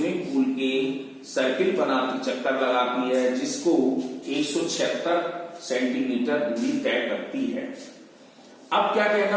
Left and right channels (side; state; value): both; identical; correlation 1.00